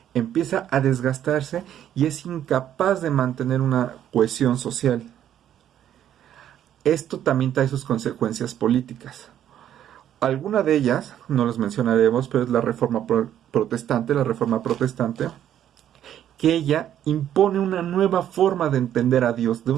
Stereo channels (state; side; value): quieter; left; 10.7 dB